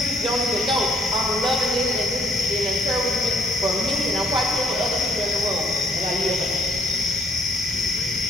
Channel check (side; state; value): both; normal; correlation 0.66